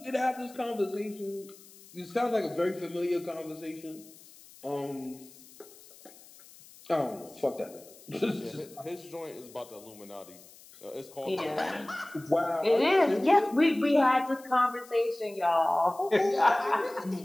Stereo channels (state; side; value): noise; left; hiss, 22 dB below the sound